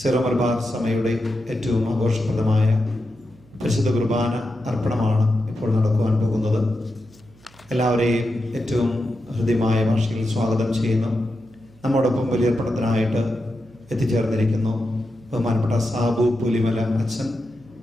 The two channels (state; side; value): noise; right; hum, 27 dB below the sound